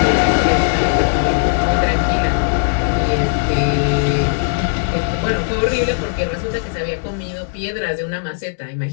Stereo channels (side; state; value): right; silent; digital silence